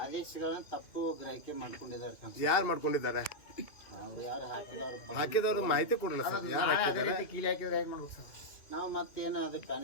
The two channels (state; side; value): late; right; 2.5 ms